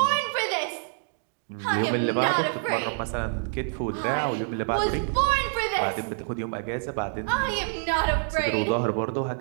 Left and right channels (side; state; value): left; silent; digital silence